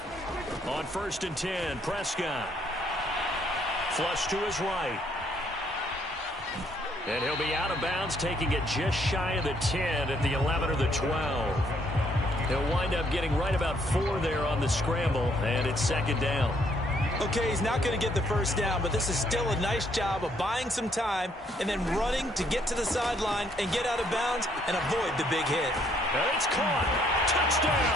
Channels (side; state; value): both; normal; correlation 0.68